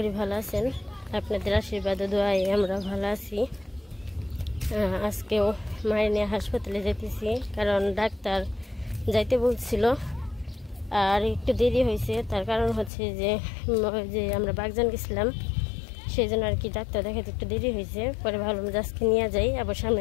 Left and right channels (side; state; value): right; drops out; at 12.9 s